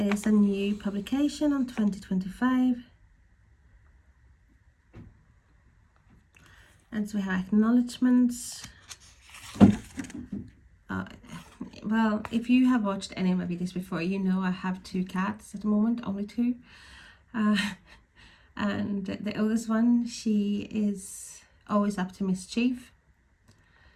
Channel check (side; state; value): both; identical; correlation 1.00